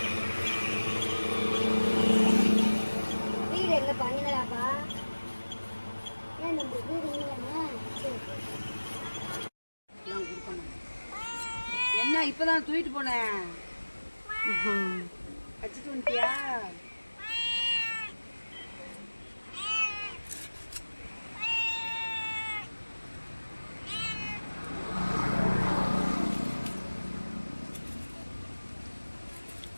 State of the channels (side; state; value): both; inverted; correlation -1.00